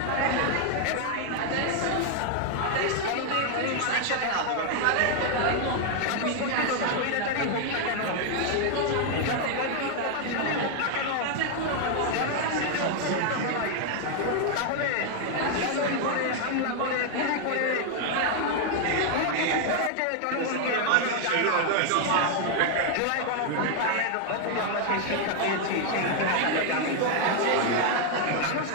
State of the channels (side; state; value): both; different; correlation 0.00